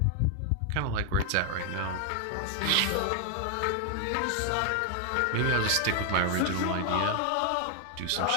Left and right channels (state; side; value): different; both; correlation 0.00